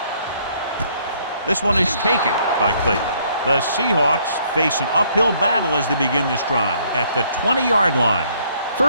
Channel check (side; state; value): both; inverted; correlation -0.65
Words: This one is taken by Clayton. The Seahawks face an uphill battle as they begin this drive at the 20-yard line.